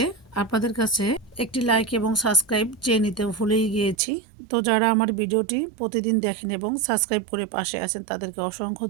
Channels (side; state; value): left; drops out; at 4.0 s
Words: আপনাদের কাছে একটি লাইক এবং সাবস্ক্রাইব চেয়ে নিতে ভুলেই গিয়েছি। তো যারা আমার ভিডিওটি প্রতিদিন দেখেন এবং সাবস্ক্রাইব করে পাশে আছেন তাদেরকে অসংখ্য